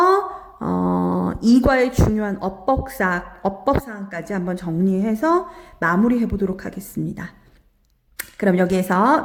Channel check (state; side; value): identical; both; correlation 1.00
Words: 이과의 중요한 어법사항까지 한번 정리해서 마무리해 보도록 하겠습니다. 그럼 여기에서